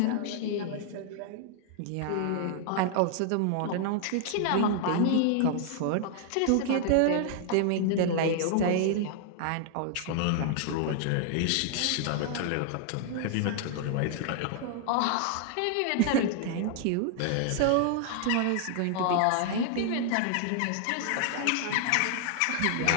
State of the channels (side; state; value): both; different; correlation 0.00